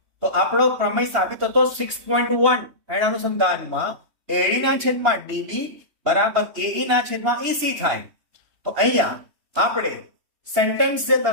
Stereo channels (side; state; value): left; late; 2.9 ms